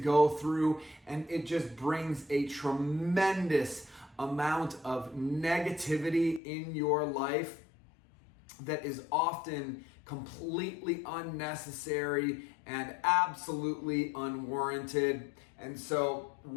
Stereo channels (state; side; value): drops out; right; at 6.4 s